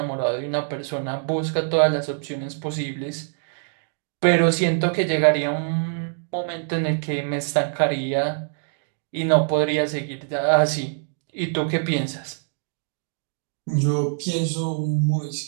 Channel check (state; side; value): silent; left; digital silence